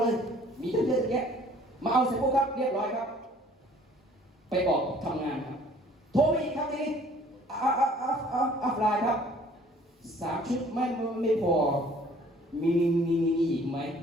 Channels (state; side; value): normal; both; correlation 0.55